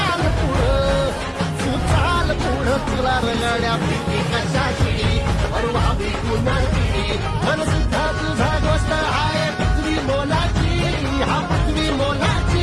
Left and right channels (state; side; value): identical; both; correlation 1.00